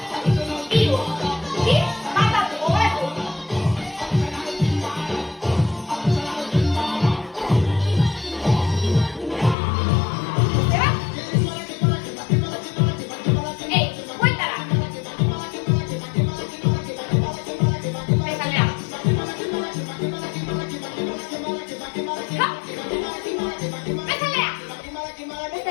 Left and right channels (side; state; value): right; drops out; at 9.6 s